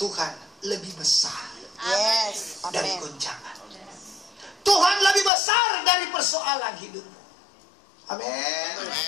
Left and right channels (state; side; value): drops out; right; at 5.3 s